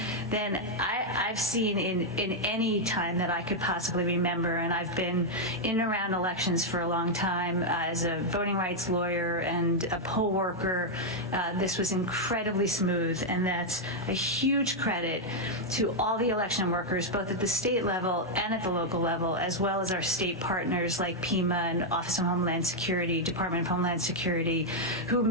than I've seen in any time that I could possibly remember. And I've been in and around elections for a long time as a voting rights lawyer and a poll worker. This was incredibly smooth, and that's a huge credit to all the election workers, both at the state level and at the local level, as well as our state partners like PEMA and Office of Homeland Security, Department of Homeland Security, who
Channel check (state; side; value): normal; both; correlation -0.02